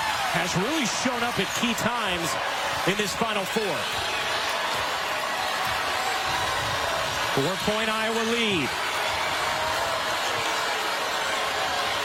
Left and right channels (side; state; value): both; identical; correlation 1.00